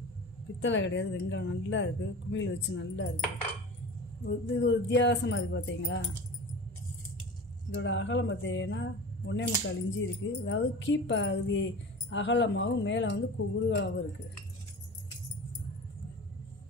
பித்தளை கிடையாது, வெங்கலம். நல்லா இருக்குது, குமிழ் வச்சு நல்லா இருக்குது. இது ஒரு வித்தியாசமாக இருக்குது பார்த்தீங்களா. இதோட அகலம் பார்த்தீங்கன்னா 1.25 இன்ச்சு இருக்குது. அதாவது கீப்பகுதி அகலமாகவும் மேலே வந்து குறுகலாகவும் இருக்குது.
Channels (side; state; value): both; normal; correlation 0.34